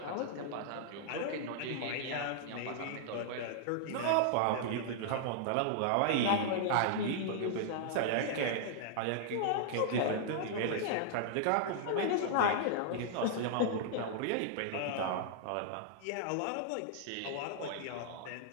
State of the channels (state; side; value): different; both; correlation -0.01